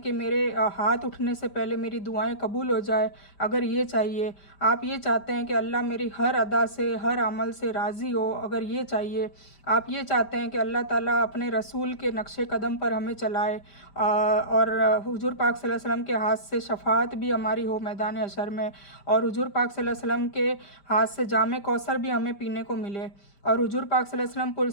कि मेरे हाथ उठने से पहले मेरी दुआएं कबूल हो जाए, अगर ये चाहिए, आप ये चाहते हैं कि अल्लाह मेरी हर अदा से हर अमल से राज़ी हो, अगर ये चाहिए, आप ये चाहते हैं कि अल्लाह ताला अपने रसूल के नक्शे कदम पर हमें चलाए और हुजूर पाक सल्लल्लाहु अलैहि वसल्लम के हाथ से शफाअत भी हमारी हो मैदान हशर में, और हुजूर पाक सल्लल्लाहु अलैहि वसल्लम के हाथ से जामे कौसर भी हमें पीने को मिले, और हुजूर पाक सल्लल्लाहु अलैहि वसल्लम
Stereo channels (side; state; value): right; late; 5.1 ms